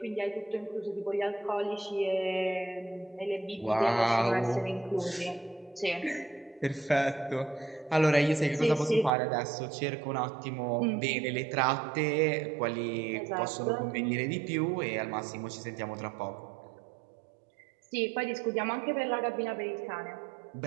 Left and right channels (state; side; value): drops out; left; at 9.1 s